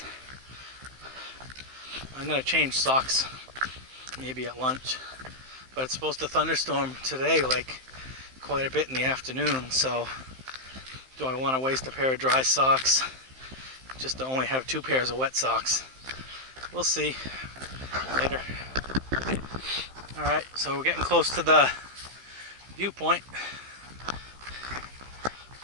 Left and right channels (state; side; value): late; left; 15 ms